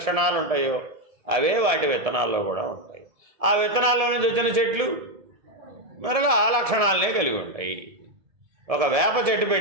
ఉంటాయో అవే వాటి విత్తనాల్లో కూడా ఉంటాయి. ఆ విత్తనాల్లో నుంచి వచ్చిన చెట్లు మరలా ఆ లక్షణాలనే కలిగి ఉంటాయి. ఒక వేప చెట్టు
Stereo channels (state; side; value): late; left; 1.7 ms